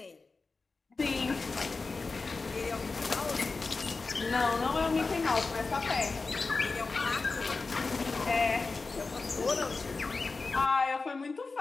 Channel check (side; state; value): right; quieter; 4.0 dB